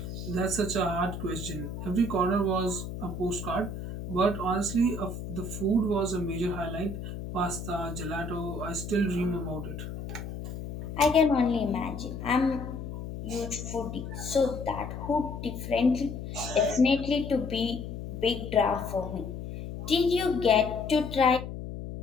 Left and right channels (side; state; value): left; noise; hum, 8 dB below the sound